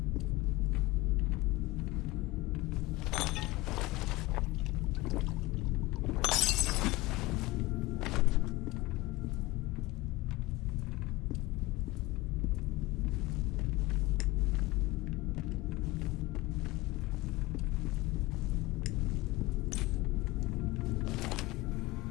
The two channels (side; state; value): right; quieter; 20.2 dB